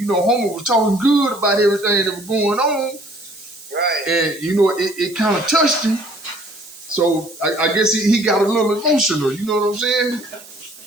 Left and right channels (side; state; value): right; noise; hiss, 20 dB below the sound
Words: know, homie was talking good about everything that was going on. Right. And, you know, it kind of touched him. So I guess he got a little emotional. You know what I'm saying?